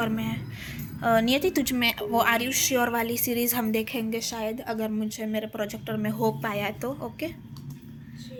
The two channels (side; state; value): both; identical; correlation 1.00